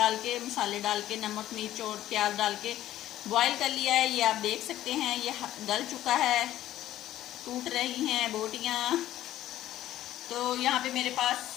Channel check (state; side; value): quieter; right; 13.5 dB